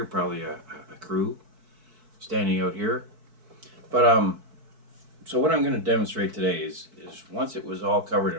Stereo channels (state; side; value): late; left; 4.6 ms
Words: probably a crew standing out here. But so what I'm going to demonstrate today is once it was all covered